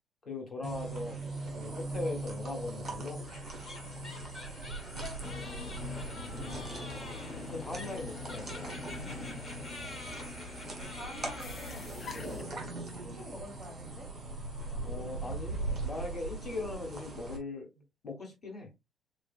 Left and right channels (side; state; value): both; normal; correlation 0.41